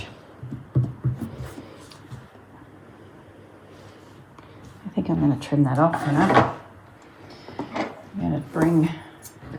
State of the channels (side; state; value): both; identical; correlation 1.00